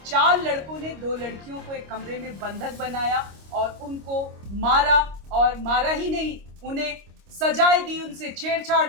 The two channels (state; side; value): late; left; 25 ms